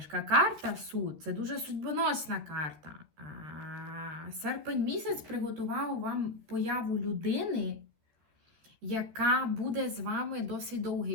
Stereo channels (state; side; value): late; left; 13 ms